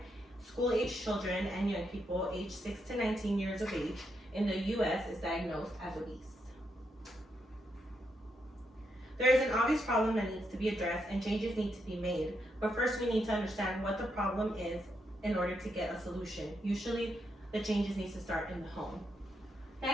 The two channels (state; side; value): normal; both; correlation 0.81